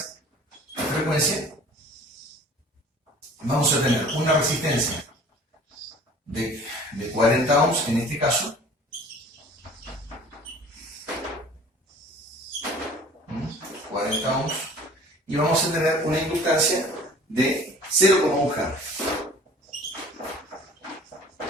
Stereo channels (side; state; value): both; normal; correlation 0.48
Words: de frecuencia. Vamos a tener una resistencia de 40 ohms en este caso, y vamos a tener una inductancia de 0,1 Hz.